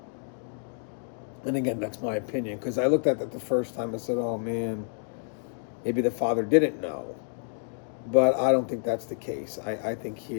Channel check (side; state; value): right; silent; digital silence